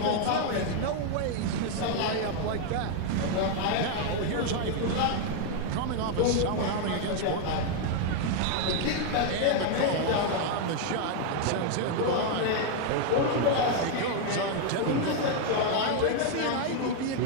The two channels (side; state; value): both; different; correlation 0.00